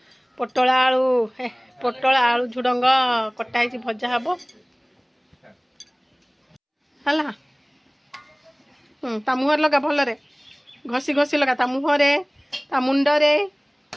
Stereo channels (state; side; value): identical; both; correlation 1.00